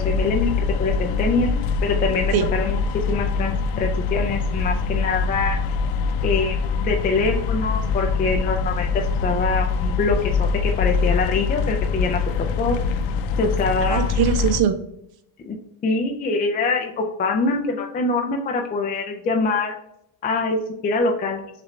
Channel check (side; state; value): right; quieter; 3.2 dB